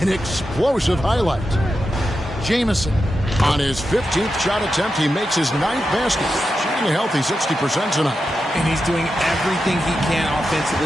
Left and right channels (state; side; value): normal; both; correlation 0.89